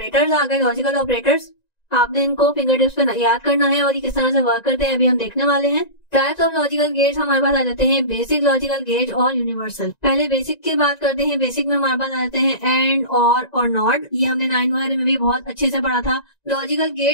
आ गए, लॉजिकल ऑपरेटर्स। आपने इनको फिंगर टिप्स पे याद करना है और ये किस तरह से वर्क करते हैं अभी हम देखने वाले हैं। टाइप्स ऑफ लॉजिकल गेट्स हमारे पास आ जाते हैं बेसिक लॉजिकल गेट और यूनिवर्सल। पहले बेसिक की बात करते हैं। बेसिक में हमारे पास आ जाते हैं एंड, और नॉट। ये हमने 9 वगैरह में भी बहुत अच्छे से पढ़ा था। लॉजिकल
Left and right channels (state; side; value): late; right; 1.9 ms